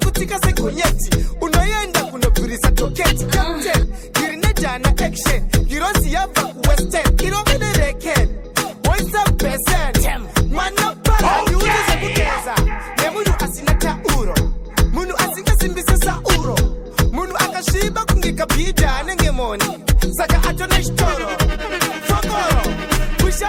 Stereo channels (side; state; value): both; identical; correlation 1.00